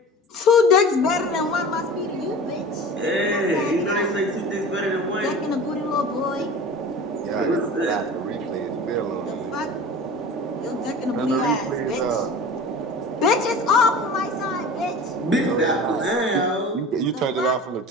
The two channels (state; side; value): normal; both; correlation 0.37